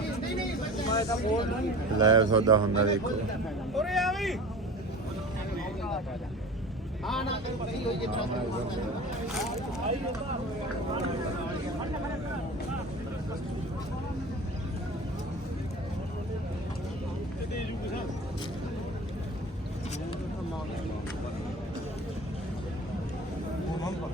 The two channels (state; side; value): normal; both; correlation 0.38